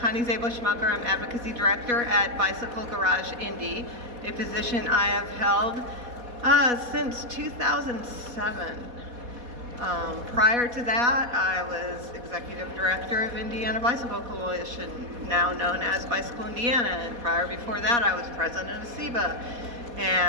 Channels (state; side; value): late; left; 4.2 ms